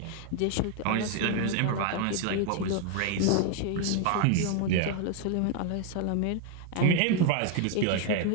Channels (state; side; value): different; both; correlation 0.00